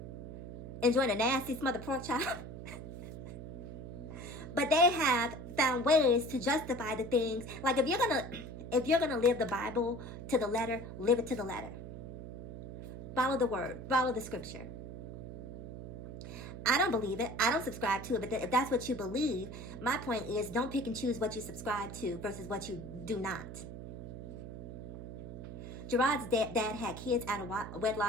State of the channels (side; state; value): right; noise; hum, 10 dB below the sound